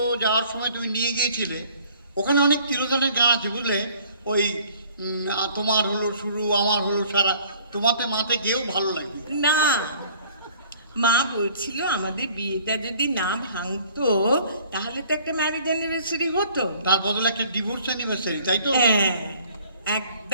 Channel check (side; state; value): both; inverted; correlation -0.55